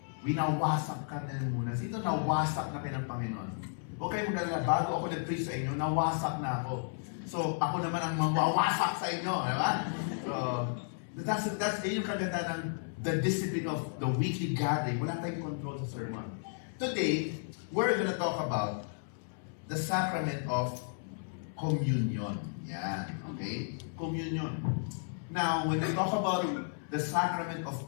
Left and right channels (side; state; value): right; silent; 56 dB below the other